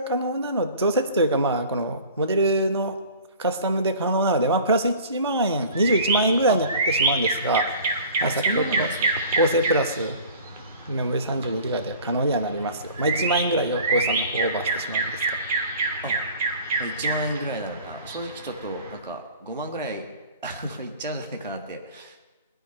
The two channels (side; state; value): both; inverted; correlation -0.45